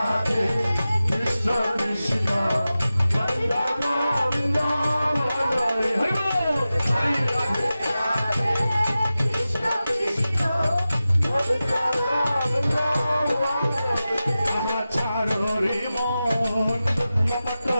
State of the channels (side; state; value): both; inverted; correlation -0.94